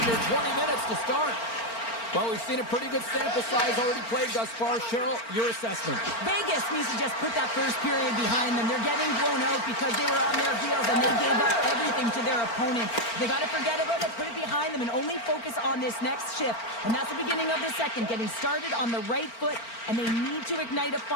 20 minutes to start. Well, we've seen a pretty good sample size already played thus far. Cheryl, your assessment. Vegas needs to just put that first period behind them. They're getting blown out because they were on their heels and they gave up everything to their opponent. They got to forget about it, put it behind them, and only focus on this next shift. And that's the beginning of the second, getting started on the right foot, and they need to ignite a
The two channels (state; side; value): late; right; 4.4 ms